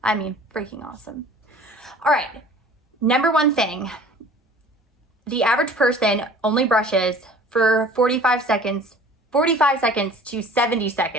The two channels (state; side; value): normal; both; correlation 0.47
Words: I mean, freaking awesome. All right, number one thing, the average person only brushes for 45 seconds to 70